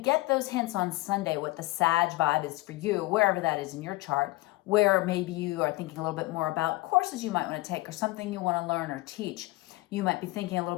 those hints on Sunday, what the Sag vibe is for you, wherever that is in your chart, where maybe you are thinking a little bit more about courses you might want to take or something you want to learn or teach. You might be thinking a little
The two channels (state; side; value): quieter; right; 20.2 dB